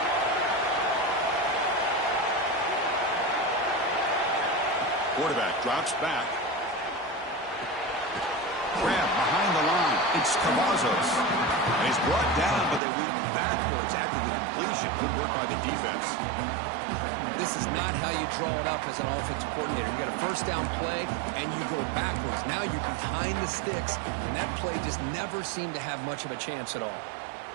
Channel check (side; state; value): left; drops out; at 12.8 s